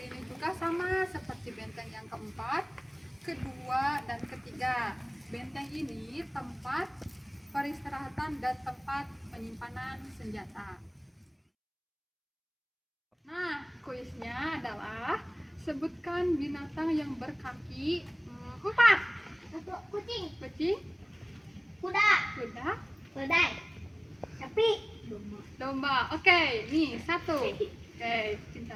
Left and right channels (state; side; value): identical; both; correlation 1.00